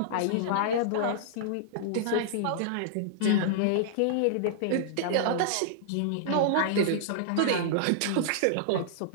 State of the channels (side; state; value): both; different; correlation -0.02